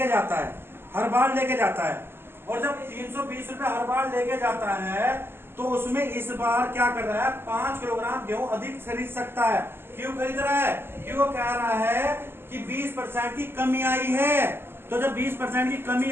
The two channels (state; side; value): late; left; 0.11 ms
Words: जाता है, और जब 320 रुपए हर बार लेके जाता है तो उसमें इस बार क्या कर रहा है, 5 किलोग्राम गेहूं अधिक खरीद सकता है। क्यों खरीद रहा है? क्यों कह रहा है कि 20% की कमी आई है। तो जब 20% की कमी